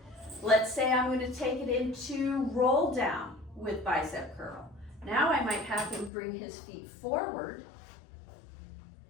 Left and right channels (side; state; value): right; drops out; at 6.1 s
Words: Let's say I'm going to take it into roll down with bicep curl. Now I might have him bring his feet forward,